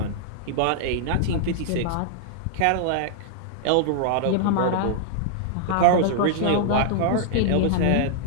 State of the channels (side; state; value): both; different; correlation -0.01